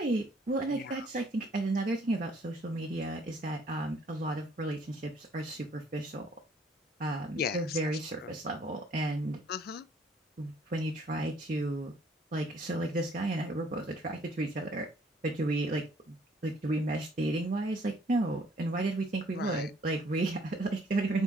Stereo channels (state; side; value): normal; both; correlation 0.62